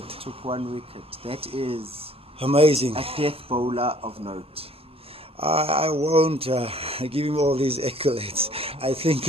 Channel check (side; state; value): both; normal; correlation 0.56